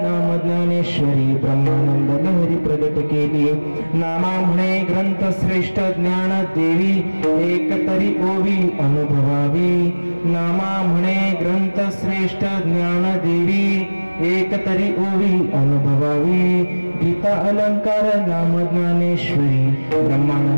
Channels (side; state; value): both; inverted; correlation -1.00